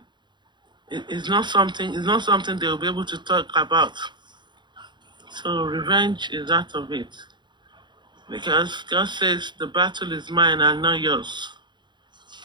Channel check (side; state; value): left; late; 0.22 ms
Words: It's not something. It's not something they will be able to talk about. So revenge is out of it. Because God says the battle is mine and not yours.